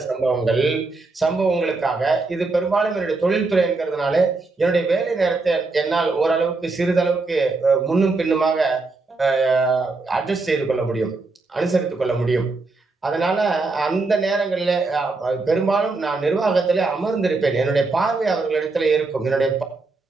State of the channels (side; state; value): left; quieter; 3.6 dB